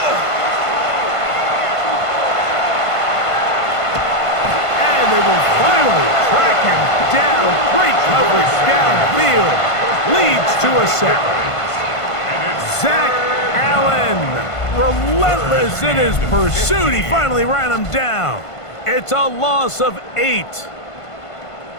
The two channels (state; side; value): late; right; 1.5 ms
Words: And they will finally track him down. Great coverage downfield. Leads to a sack. Zach Allen, relentless in his pursuit. He finally ran him down. It's a loss of 8.